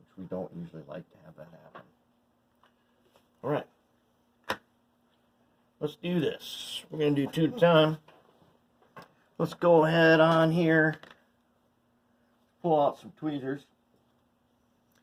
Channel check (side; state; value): both; identical; correlation 1.00